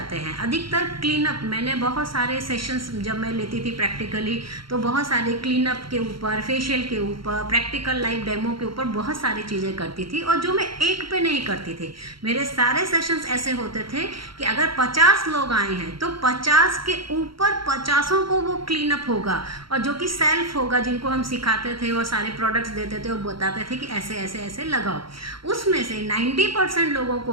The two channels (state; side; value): late; left; 0.74 ms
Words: हैं। अधिकतर क्लीनअप, मैंने बहुत सारे सेशंस जब मैं लेती थी प्रैक्टिकली, तो बहुत सारे क्लीनअप के ऊपर, फेशियल के ऊपर, प्रैक्टिकल लाइव डेमो के ऊपर बहुत सारी चीज़ें करती थी, और जो मैं एक पे नहीं करती थी। मेरे सारे सेशंस ऐसे होते थे कि अगर 50 लोग आए हैं तो 50 के ऊपर 50 को वो क्लीनअप होगा, और जो कि सेल्फ होगा, जिनको हम सिखाते थे और सारे प्रोडक्ट्स देते थे और बताते थे कि ऐसे ऐसे ऐसे लगाओ। उसमें से 90% लोगों